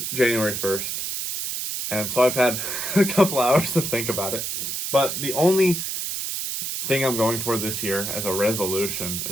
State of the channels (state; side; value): noise; right; hiss, 3 dB below the sound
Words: January 1st. And so I've had a couple hours to think about it. But the only thing I'm going for this year as a resolution,